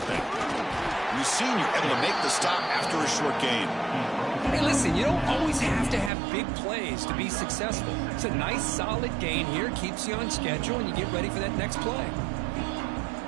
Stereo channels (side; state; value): left; drops out; at 6.1 s